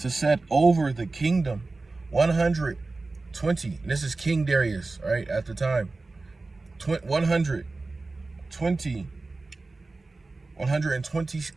set over the kingdom 120. And this is King Darius, right, at the time. 120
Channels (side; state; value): left; quieter; 3.5 dB